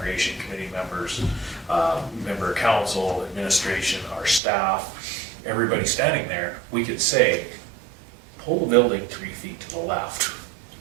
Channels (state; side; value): drops out; left; at 4.4 s